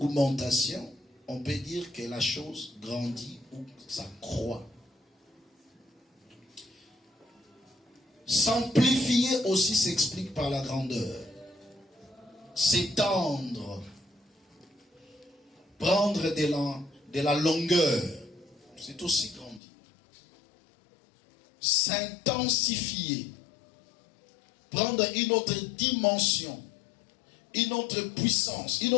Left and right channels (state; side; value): drops out; right; at 19.6 s